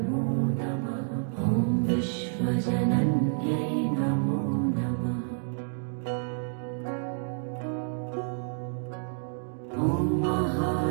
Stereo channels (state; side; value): silent; left; digital silence